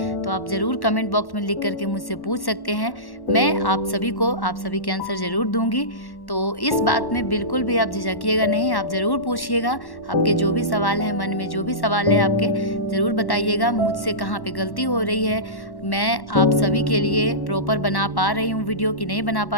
तो आप ज़रूर कमेंट बॉक्स में लिख करके मुझसे पूछ सकते हैं। मैं आप सभी के आंसर ज़रूर दूंगी। तो इस बात में बिल्कुल भी आप झिझकिएगा नहीं, आप ज़रूर पूछिएगा। आपके जो भी सवाल हैं, मन में जो भी सवाल है आपके, ज़रूर बताइएगा मुझसे कहाँ पे गलती हो रही है। मैं आप सभी के लिए प्रॉपर बना पा रही हूँ वीडियो कि नहीं बना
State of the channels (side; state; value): right; late; 1.1 ms